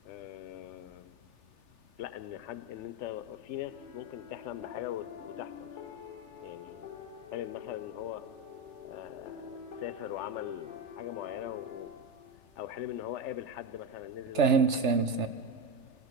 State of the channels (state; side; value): late; left; 3.4 ms